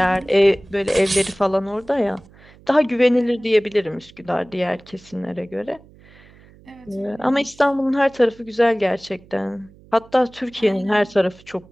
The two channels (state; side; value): noise; right; hum, 25 dB below the sound